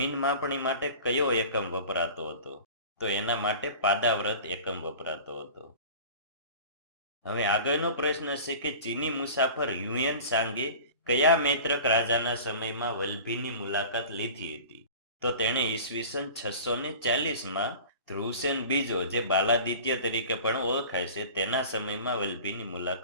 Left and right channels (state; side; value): inverted; both; correlation -0.40